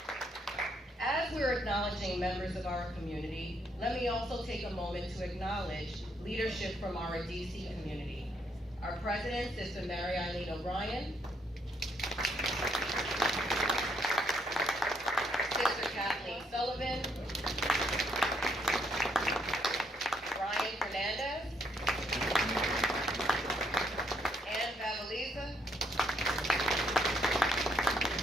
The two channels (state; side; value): normal; both; correlation 0.72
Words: As we're acknowledging members of our community, let me also take a moment to acknowledge leadership from our DC community. Our president, Sister Mary Eileen O'Brien, Sister Kathleen Sullivan, Brian Fernandez, Ann Vavaliza,